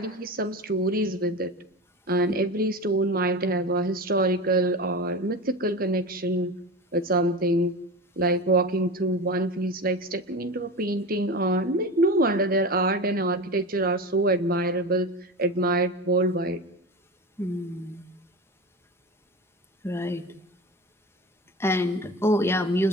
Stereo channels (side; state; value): both; normal; correlation 0.27